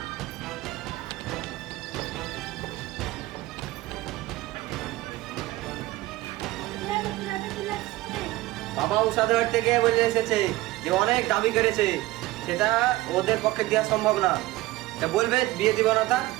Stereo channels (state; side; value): quieter; left; 18.2 dB